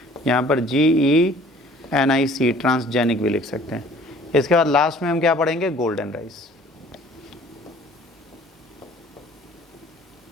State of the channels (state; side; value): normal; both; correlation 0.52